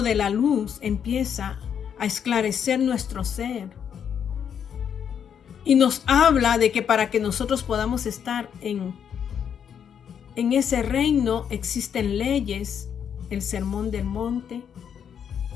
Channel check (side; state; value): right; quieter; 8.1 dB